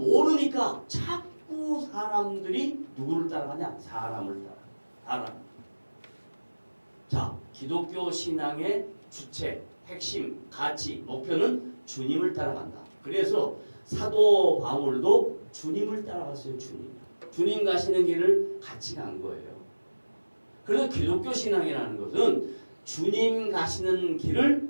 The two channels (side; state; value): both; inverted; correlation -1.00